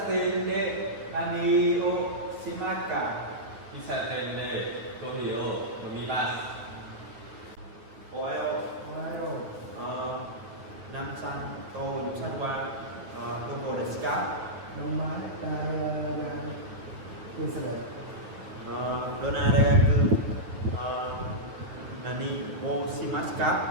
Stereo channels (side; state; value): left; late; 9.5 ms